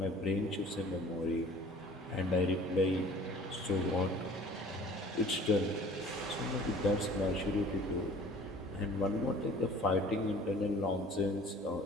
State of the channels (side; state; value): both; normal; correlation 0.48